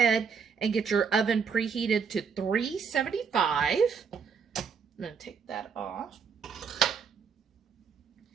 and get your oven preheated to 375. I'm going to take that off.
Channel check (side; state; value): left; quieter; 6.2 dB